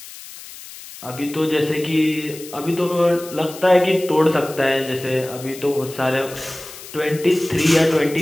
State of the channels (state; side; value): noise; left; hiss, 15 dB below the sound